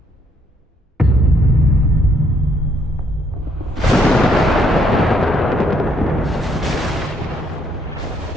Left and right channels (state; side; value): normal; both; correlation 0.70